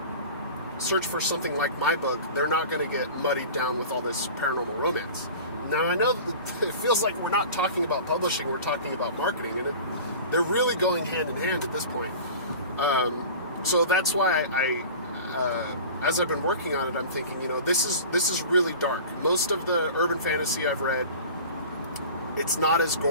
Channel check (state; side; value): inverted; both; correlation -0.38